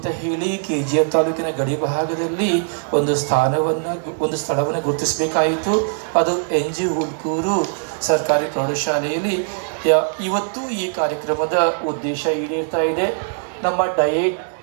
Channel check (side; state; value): left; silent; digital silence